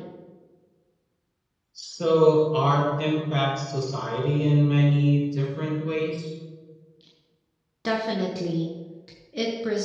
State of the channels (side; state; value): both; identical; correlation 1.00